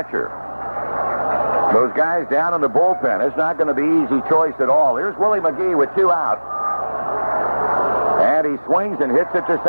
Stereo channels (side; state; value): both; inverted; correlation -1.00